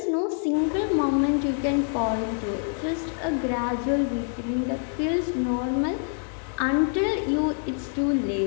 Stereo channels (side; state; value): right; silent; 61 dB below the other